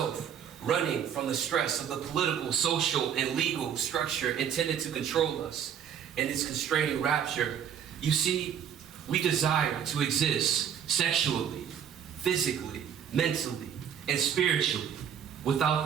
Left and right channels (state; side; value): quieter; left; 8.6 dB